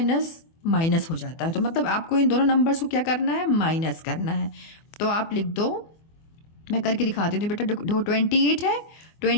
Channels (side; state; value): right; late; 24 ms